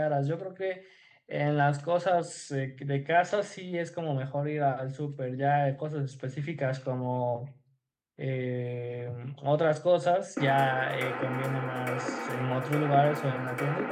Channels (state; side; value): identical; both; correlation 1.00